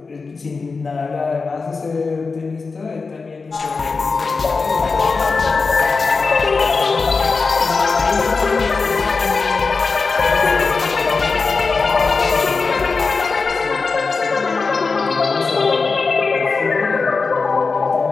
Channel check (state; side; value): quieter; right; 4.4 dB